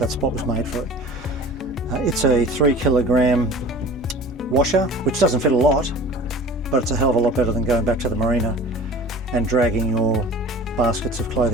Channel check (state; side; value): normal; both; correlation 0.41